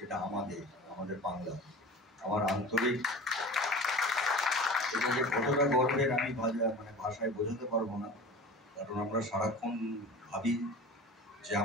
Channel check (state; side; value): normal; both; correlation 0.36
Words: আমাদের বাংলা। আমার আন্তরিক এটা যে কতটা গর্বের আমি ভাষায় বোঝাতে পারবো না। কারণ আমরা সারাক্ষণ ভাবি যে